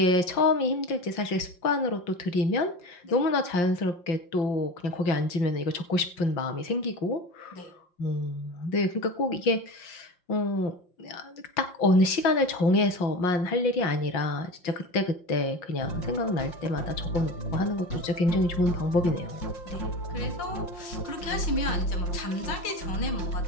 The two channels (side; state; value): right; late; 5.7 ms